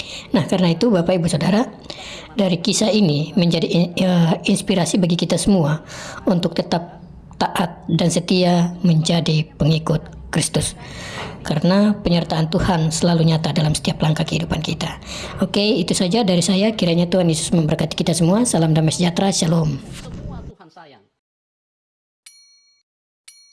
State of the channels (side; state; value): both; identical; correlation 1.00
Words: Nah, karena itu Bapak, Ibu, Saudara, dari kisah ini menjadi inspirasi bagi kita semua untuk tetap taat dan setia menjadi pengikut Kristus, karena penyertaan Tuhan selalu nyata dalam setiap langkah kehidupan kita. Oke, itu saja dari saya. Kiranya Tuhan Yesus memberkati kita semua. Salam damai sejahtera. Shalom.